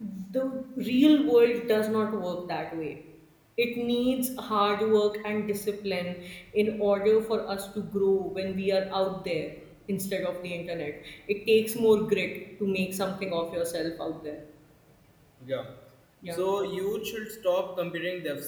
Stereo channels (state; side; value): identical; both; correlation 1.00